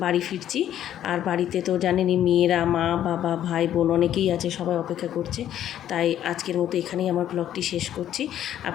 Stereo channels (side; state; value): right; quieter; 11.2 dB